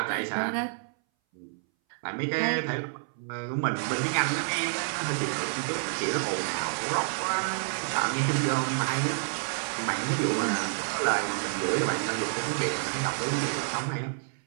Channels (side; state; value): left; silent; 59 dB below the other